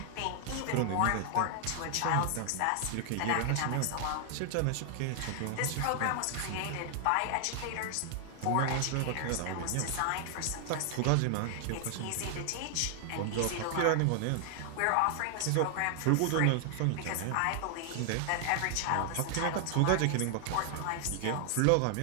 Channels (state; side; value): different; both; correlation 0.00